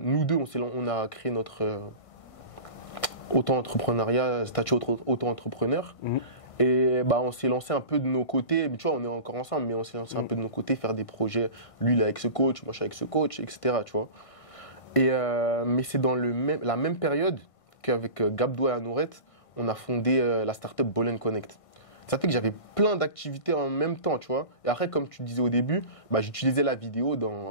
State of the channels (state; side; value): late; right; 1.6 ms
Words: deux, on a créé notre auto-entrepreneuriat, statut auto-entrepreneur. Et on s'est lancé un peu de nos côtés. Tu vois, on est encore ensemble, mais on s'est lancé un peu de nos côtés, faire des projets. Lui, il est avec ce coach, moi, je suis avec ce coach, etc. Tu vois. Mais c'est dans la même période qu'avec Gabdo et Anourette, on a fondé la startup Ball & Connect. Ça fait que j'avais plein d'activités en même temps, tu vois. Et après, comme tu disais au début, j'utilisais la vidéo